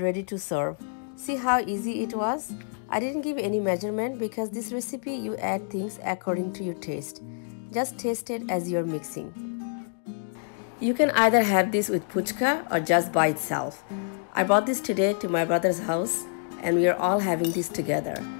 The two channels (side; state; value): right; silent; digital silence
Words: to serve. See how easy it was? I didn't give any measurement because this recipe you add things according to your taste. Just taste it as you're mixing. You can either have this with puchka or just by itself. I brought this today to my brother's house and we are all having this together.